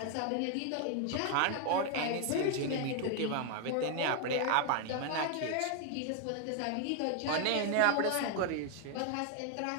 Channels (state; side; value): different; both; correlation 0.00